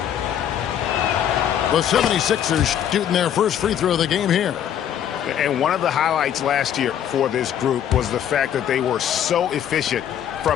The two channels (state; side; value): quieter; right; 9.9 dB